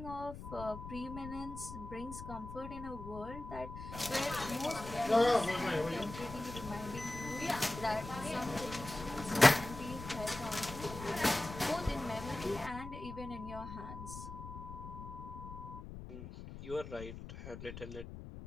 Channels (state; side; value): noise; left; rumble, 11 dB below the sound